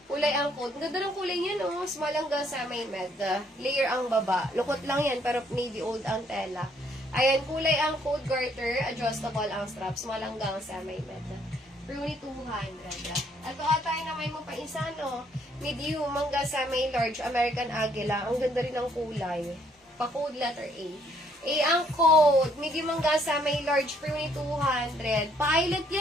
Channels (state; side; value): normal; both; correlation 0.67